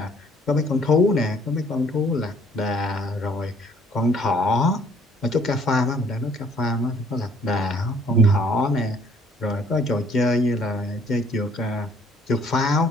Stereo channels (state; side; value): normal; both; correlation 0.60